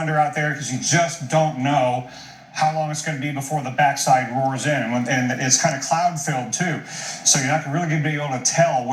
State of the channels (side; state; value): both; identical; correlation 1.00